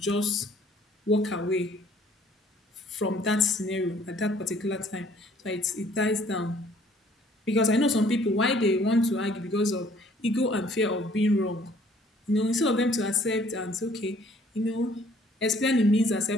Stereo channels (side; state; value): both; normal; correlation 0.59